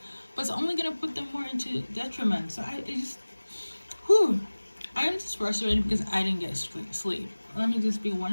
but it's only gonna put them more into detriment. So I am just frustrated because I didn't get sleep. Let me just be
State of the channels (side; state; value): both; inverted; correlation -1.00